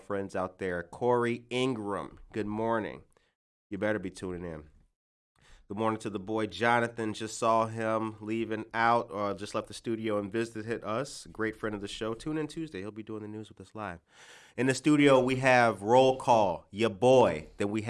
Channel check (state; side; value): identical; both; correlation 1.00